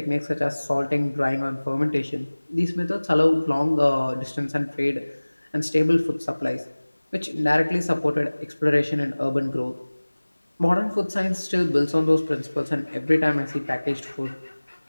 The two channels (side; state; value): both; inverted; correlation -1.00